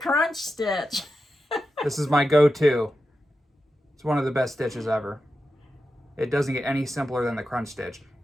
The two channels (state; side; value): normal; both; correlation 0.90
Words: stitch. This is my go-to. It's one of the best stitches ever. It doesn't get any simpler than the crunch stitch.